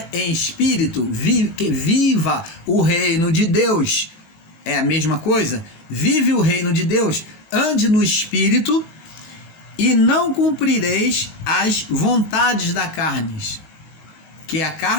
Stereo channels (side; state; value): right; late; 19 ms